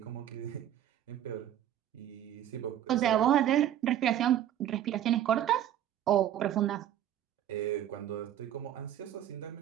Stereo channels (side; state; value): left; quieter; 11.2 dB